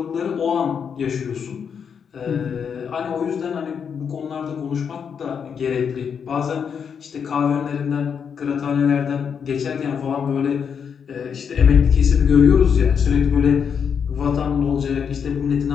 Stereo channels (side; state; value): right; quieter; 7.0 dB